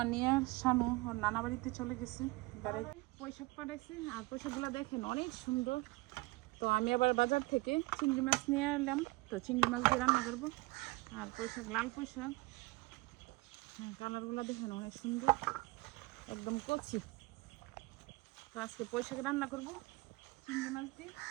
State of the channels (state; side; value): quieter; left; 22.5 dB